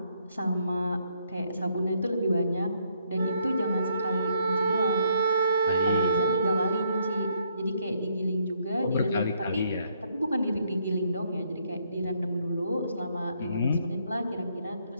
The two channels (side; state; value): both; inverted; correlation -0.72